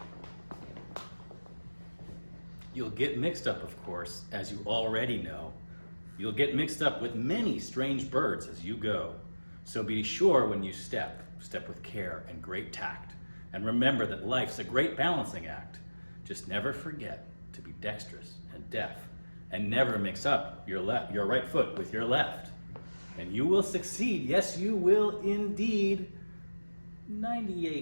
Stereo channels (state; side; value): inverted; both; correlation -1.00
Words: You'll get mixed up, of course, as you already know. You'll get mixed up with many strange birds as you go. So be sure when you step with care and great tact. And remember that life's a great balancing act. Just never forget to be dexterous and deft, and never mix up your right foot with your left. And you will succeed, yes you will indeed.